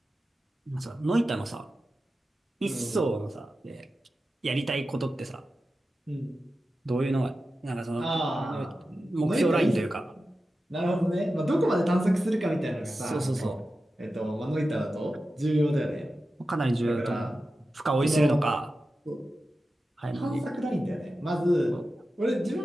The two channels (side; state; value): both; normal; correlation 0.93